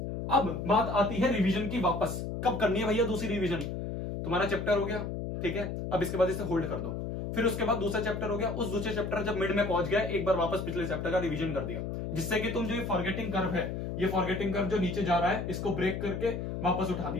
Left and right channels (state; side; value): noise; left; hum, 4 dB below the sound